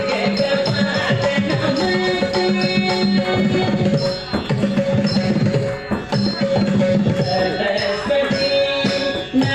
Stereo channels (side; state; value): both; identical; correlation 1.00